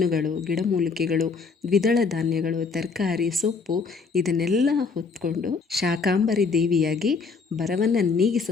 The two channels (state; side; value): quieter; right; 4.8 dB